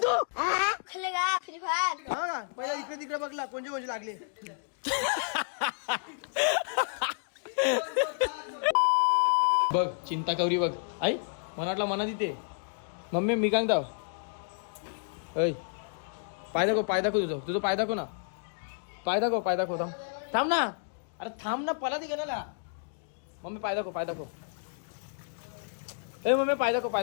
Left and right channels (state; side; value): silent; right; digital silence